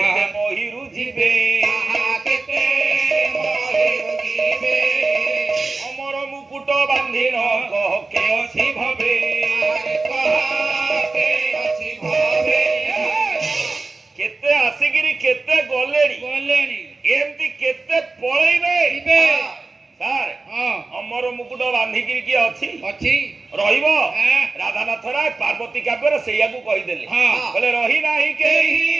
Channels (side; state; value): left; quieter; 3.7 dB